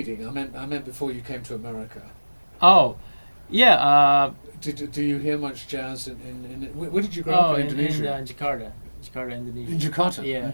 I meant before you came to America. Oh, yeah. Do you hear much jazz in where did you grow up in Indonesia? In Jakarta, Indonesia. In Jakarta. Yeah.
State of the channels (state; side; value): inverted; both; correlation -1.00